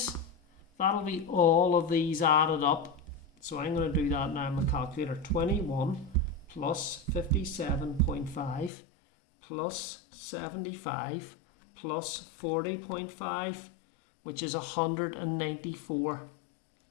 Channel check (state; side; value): drops out; right; at 8.7 s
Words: that'll be all of these added up. So I'm going to do that now on my calculator. 21 plus 57.5 plus 75 plus 40.5, which is 194.